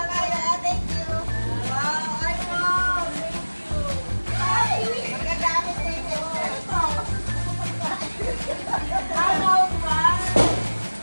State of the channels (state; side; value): inverted; both; correlation -1.00